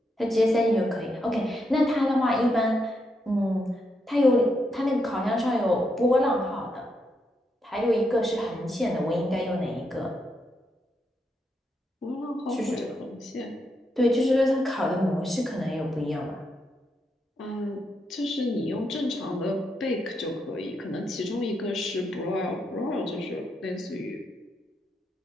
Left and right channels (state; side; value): normal; both; correlation 0.81